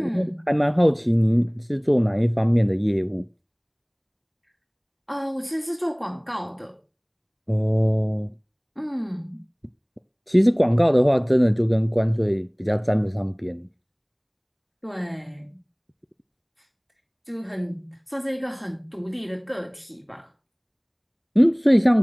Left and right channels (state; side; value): identical; both; correlation 1.00